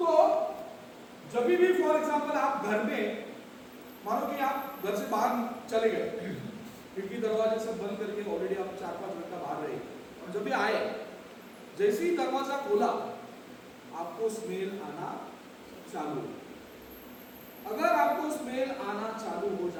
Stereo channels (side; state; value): both; identical; correlation 1.00